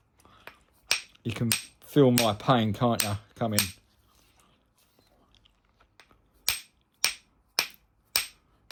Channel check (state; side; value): identical; both; correlation 1.00